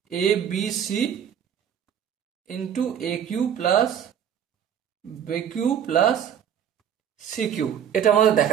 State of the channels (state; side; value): quieter; left; 8.9 dB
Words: A B C into A Q plus B Q plus C Q. এটা আমাদের